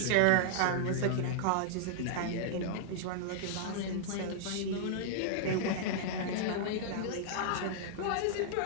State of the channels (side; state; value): both; different; correlation -0.01